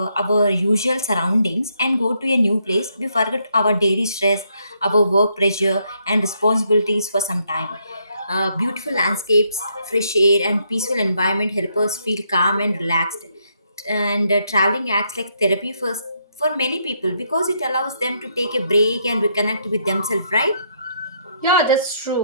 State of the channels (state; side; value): inverted; both; correlation -0.74